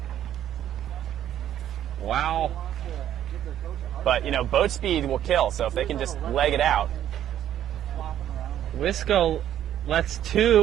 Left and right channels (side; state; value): left; quieter; 11.1 dB